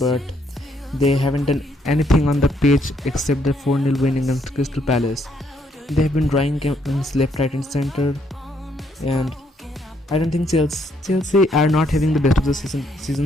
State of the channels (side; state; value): both; normal; correlation 0.72